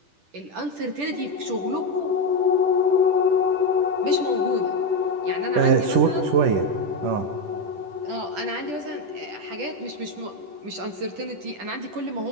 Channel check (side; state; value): left; late; 10 ms